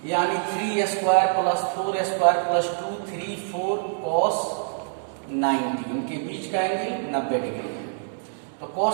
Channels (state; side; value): silent; left; digital silence